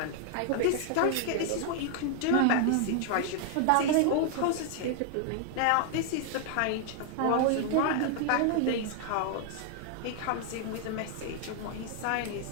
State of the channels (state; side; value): different; both; correlation 0.00